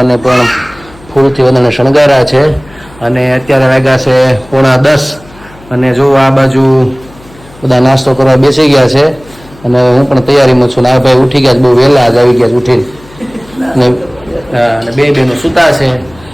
પણ ફૂલથી બધાને શણગાર્યા છે અને અત્યારે વાગ્યા છે 9:45 અને જો આ બાજુ બધા નાસ્તો કરવા બેસી ગયા છે અને હું પણ તૈયારીમાં છું. આ ભાઈ ઉઠી ગયા, બહુ વહેલા જ આવી ગયા ઉઠીને અને બે બહેનો સૂતા છે.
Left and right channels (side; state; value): left; noise; hum, 24 dB below the sound